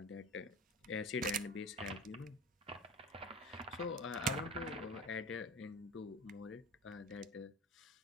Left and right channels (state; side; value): normal; both; correlation 0.34